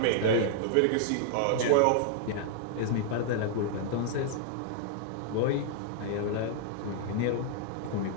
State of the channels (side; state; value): both; different; correlation -0.01